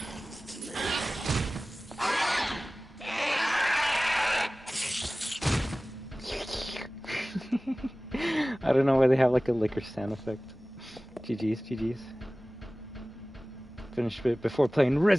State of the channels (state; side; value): normal; both; correlation 0.97